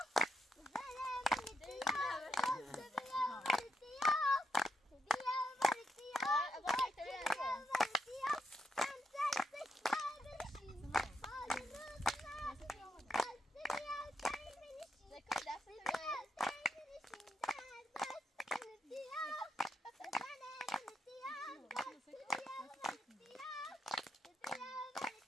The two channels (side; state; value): both; normal; correlation 0.80